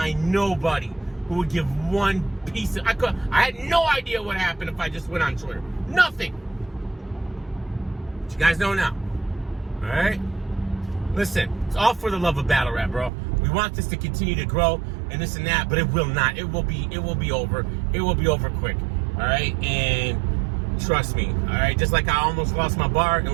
nobody who would give one piece of... I had no idea what happened if I just went on Twitter. Nothing. But you guys know now. All right? Listen, it's all for the love of battle rap, bro. We want this to continue to grow and this and that, but it will not. It will be over. It will be over quick. All right? And trust me, all right? Just like I almost lost my bar and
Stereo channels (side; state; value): left; drops out; at 13.1 s